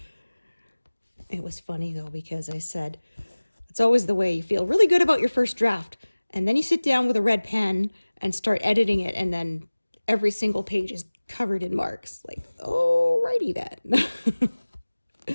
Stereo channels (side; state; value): both; inverted; correlation -1.00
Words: It was funny though, because I said, it's always the way. You feel really good about your first draft, and then you sit down with a red pen and start editing it, and then every single page is covered in marks. Like, alrighty then.